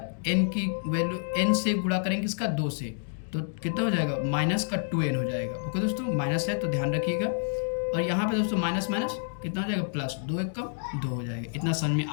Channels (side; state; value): right; silent; digital silence